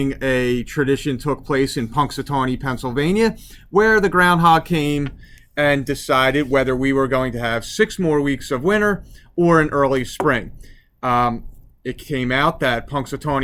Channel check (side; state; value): both; identical; correlation 1.00